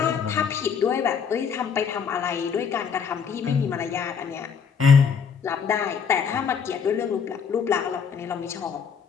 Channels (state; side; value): quieter; right; 6.6 dB